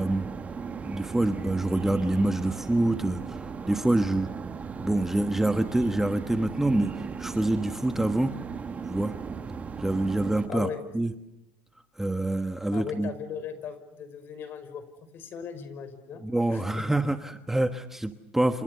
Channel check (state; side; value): normal; both; correlation 0.94